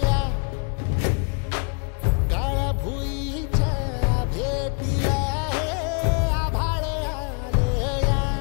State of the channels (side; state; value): right; quieter; 36.4 dB